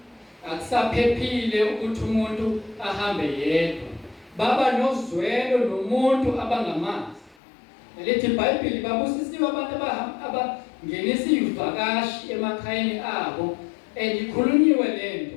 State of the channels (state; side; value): drops out; right; at 7.4 s